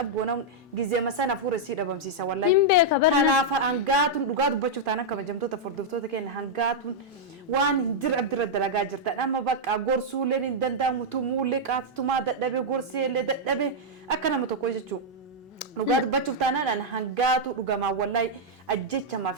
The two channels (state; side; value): normal; both; correlation -0.04